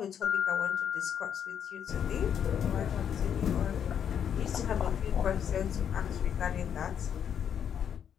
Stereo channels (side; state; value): right; quieter; 8.5 dB